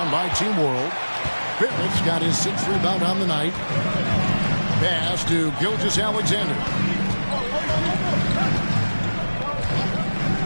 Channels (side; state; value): both; inverted; correlation -1.00